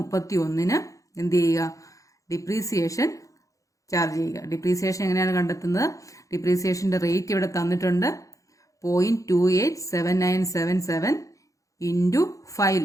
എന്ത് ചെയ്യുക? ഡിപ്രീസിയേഷൻ ചാർജ് ചെയ്യുക. ഡിപ്രീസിയേഷൻ എങ്ങനെയാണ് കണ്ടെത്തുന്നത്? ഡിപ്രീസിയേഷന്റെ റേറ്റ് ഇവിടെ തന്നിട്ടുണ്ട്. 0.287977 ഇൻറ്റു 5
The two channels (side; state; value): right; late; 0.16 ms